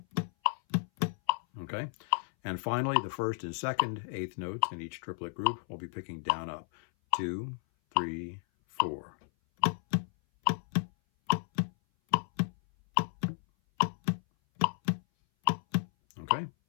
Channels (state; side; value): silent; right; 56 dB below the other